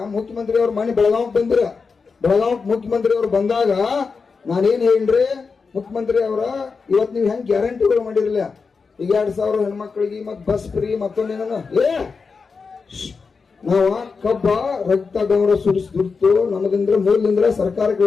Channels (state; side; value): quieter; right; 4.9 dB